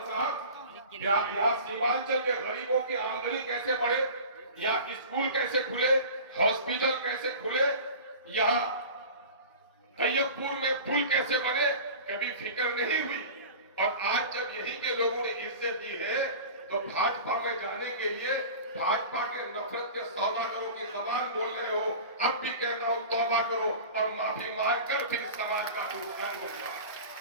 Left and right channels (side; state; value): both; inverted; correlation -0.37